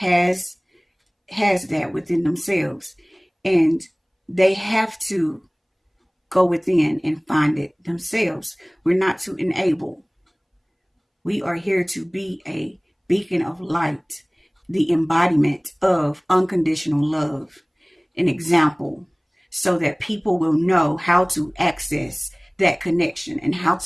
that within themselves, and they have to go within and find it themselves. We're not to enable. We are here to be a beacon of light, the embodiment of unconditional love, an example, so that people will know how to access that connection and how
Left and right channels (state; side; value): identical; both; correlation 1.00